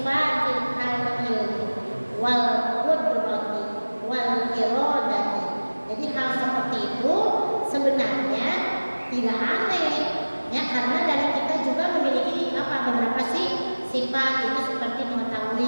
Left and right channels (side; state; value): both; inverted; correlation -1.00